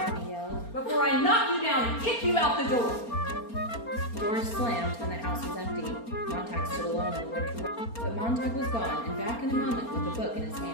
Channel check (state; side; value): late; right; 4.3 ms